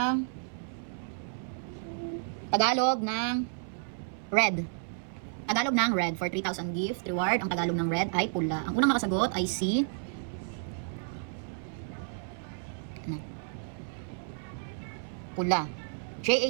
Tagalog ng red? Tagalog ng red for 3,000 gift reward. Ang Tagalog ng red ay pula. Ang unang nakasagot ay si pula. J.A.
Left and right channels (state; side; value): silent; left; 57 dB below the other